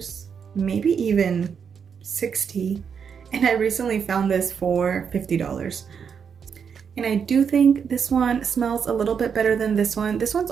maybe even $60. And I recently found this for $50. And I do think this one smells a little bit better than this one. This one's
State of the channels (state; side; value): quieter; left; 6.8 dB